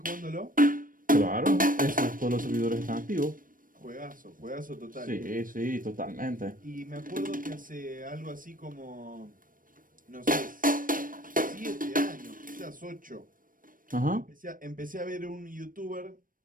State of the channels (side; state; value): left; late; 0.40 ms